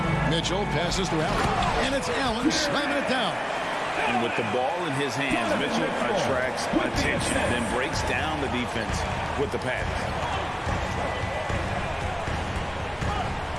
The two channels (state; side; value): identical; both; correlation 1.00